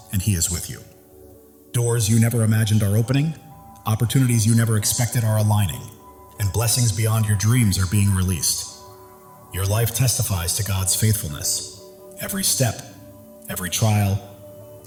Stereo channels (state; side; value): identical; both; correlation 1.00